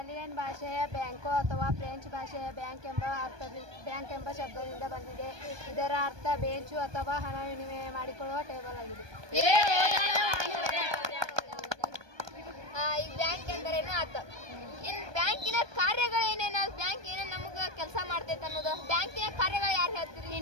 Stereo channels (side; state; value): left; late; 1.2 ms